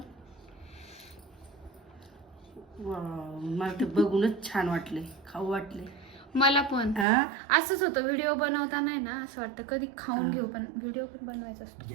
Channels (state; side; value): drops out; left; at 7.1 s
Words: मला ते बघूनच छान वाटले खाऊ वाटले. मला पण असंच होतं. व्हिडिओ बनवताना आहे ना असं वाटतं कधी खाऊन घेऊ पण व्हिडिओ पण बनवायचा असतो.